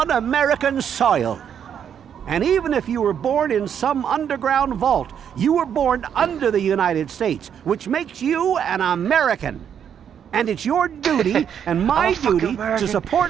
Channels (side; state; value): left; quieter; 8.5 dB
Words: American soil. And even if you were born in some underground vault, you were born under the United States, which makes you an American. And it's your duty and my I'm a fucking duty to American. support